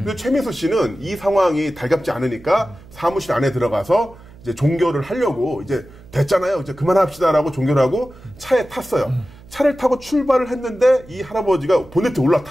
최민수 씨는 이 상황이 달갑지 않으니까 사무실 안에 들어가서 이제 종결을 하려고 이제 됐잖아요. 이제 그만합시다라고 종결을 하고 차에 탔어요. 차를 타고 출발을 했는데 이 할아버지가 보네트에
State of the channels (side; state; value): right; noise; hum, 22 dB below the sound